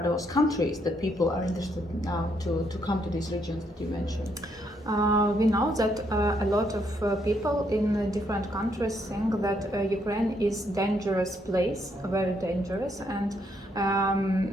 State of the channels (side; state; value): both; normal; correlation 0.74